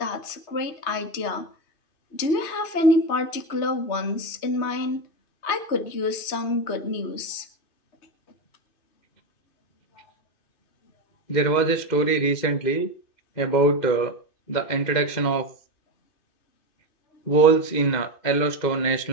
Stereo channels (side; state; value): right; late; 2.6 ms